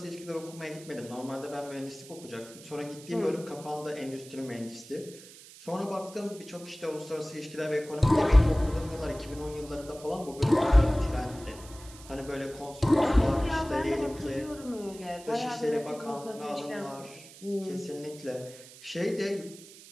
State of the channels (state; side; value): noise; right; hiss, 18 dB below the sound